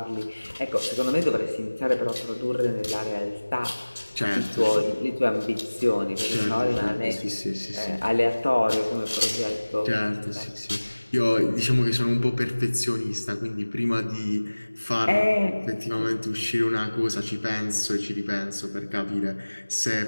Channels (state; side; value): inverted; both; correlation -1.00